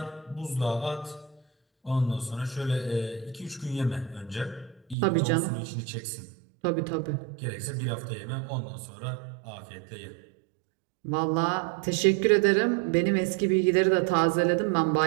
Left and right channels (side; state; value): left; drops out; at 5.0 s